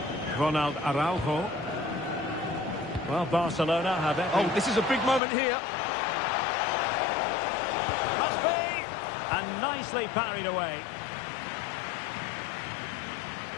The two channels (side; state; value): right; drops out; at 5.2 s